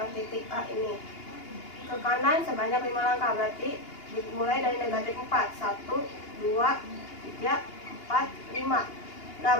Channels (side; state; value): right; late; 2.8 ms